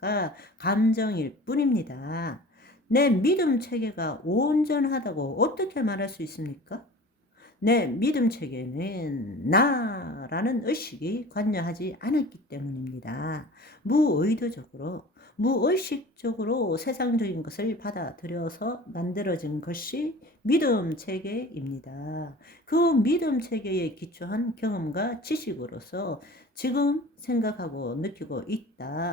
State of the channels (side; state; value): both; normal; correlation 0.41